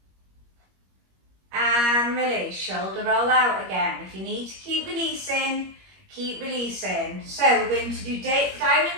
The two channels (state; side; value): late; left; 21 ms